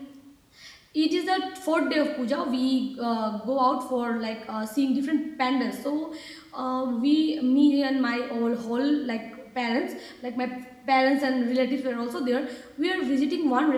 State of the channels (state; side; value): identical; both; correlation 1.00